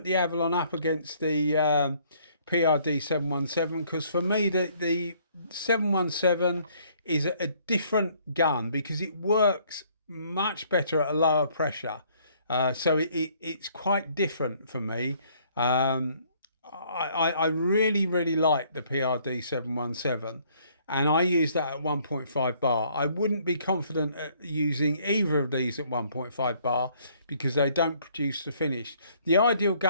Avalon up against the PRD 717 because for me the 717 is a different gun because it works much better at a lower pressure, so it's quite different for me. I really like the PRD 717, and I use that at 1.5 bar. I wouldn't be confident at using either of these at 1.5 bar because they don't produce the finish. The ideal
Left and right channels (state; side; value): inverted; both; correlation -0.63